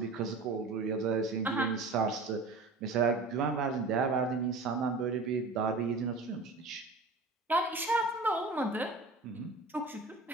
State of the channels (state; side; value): quieter; left; 3.6 dB